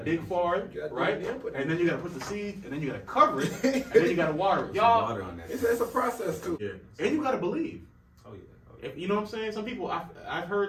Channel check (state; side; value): identical; both; correlation 1.00